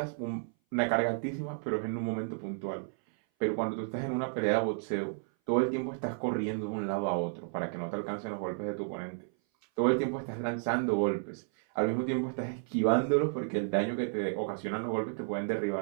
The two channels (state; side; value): silent; left; 56 dB below the other